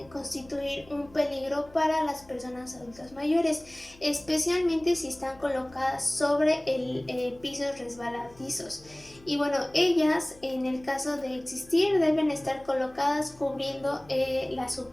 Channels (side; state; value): left; noise; hum, 25 dB below the sound